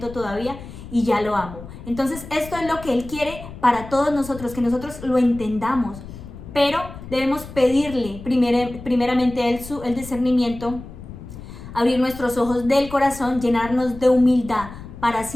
todavía y ya lo amo. Entonces esto es lo que Él quiere para todos nosotros, que nosotros lo entendamos, pero debemos pedirle primeramente a Él el discernimiento, abrir nuestros ojos del corazón, llenarnos de humildad para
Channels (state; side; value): noise; left; rumble, 14 dB below the sound